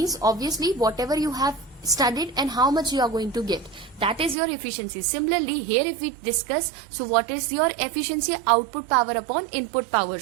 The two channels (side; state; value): left; drops out; at 4.4 s